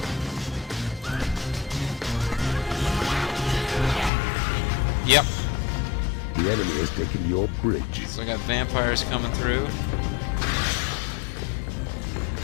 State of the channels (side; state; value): right; drops out; at 4.1 s